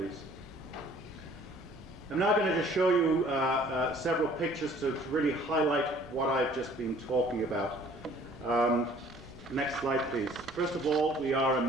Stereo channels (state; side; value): noise; right; rumble, 23 dB below the sound